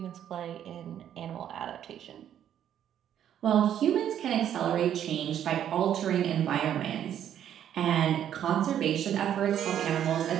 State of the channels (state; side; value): quieter; left; 10.1 dB